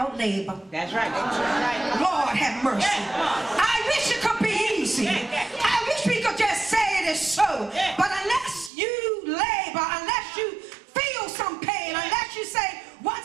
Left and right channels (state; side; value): drops out; left; at 8.7 s